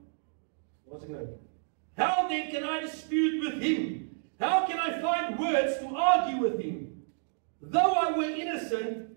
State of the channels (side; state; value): left; silent; digital silence